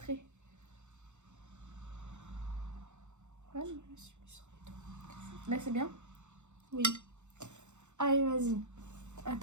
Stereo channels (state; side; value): late; left; 0.83 ms